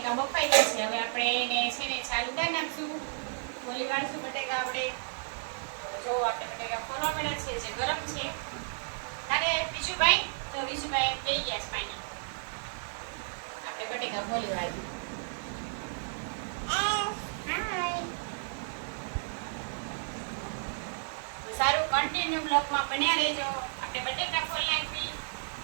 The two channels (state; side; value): silent; left; digital silence